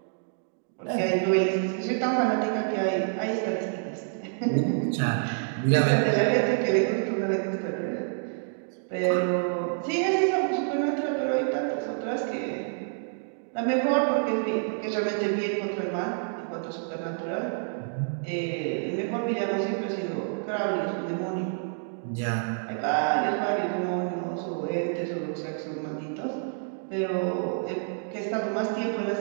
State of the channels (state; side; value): silent; left; digital silence